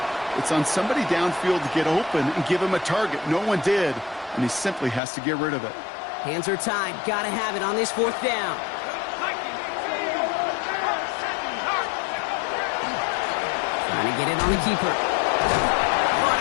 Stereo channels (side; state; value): right; drops out; at 5.0 s